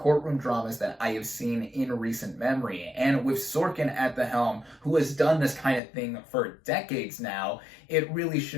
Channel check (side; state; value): right; drops out; at 5.8 s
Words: dramas that I have seen in recent memory. And with Sorkin at the helm, who has done this kind of thing for decades now, it really